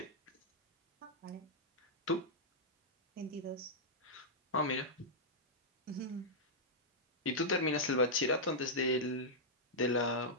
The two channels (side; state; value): both; normal; correlation -0.08